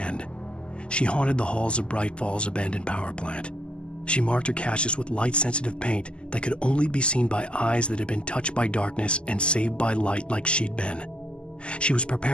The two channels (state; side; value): late; right; 0.051 ms